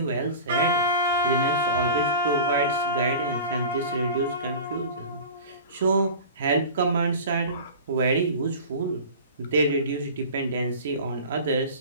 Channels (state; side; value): inverted; both; correlation -0.36